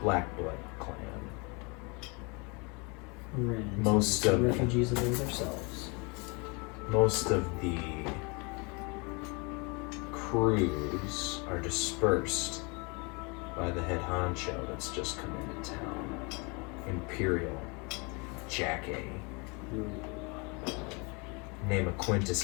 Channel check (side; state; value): right; quieter; 30.5 dB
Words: Black Blood clan. Ran into Most some of- refugees of those ourselves. Most of the crews are dispersed by the head honcho that's just come into town, Imperial Jack A. name of Quintus